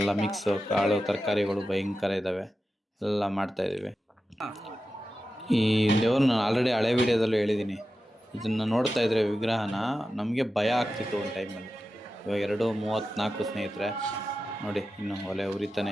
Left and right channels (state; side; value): normal; both; correlation 0.92